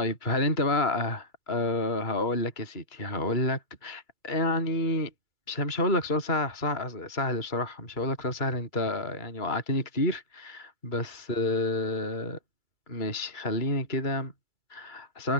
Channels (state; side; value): late; right; 2.3 ms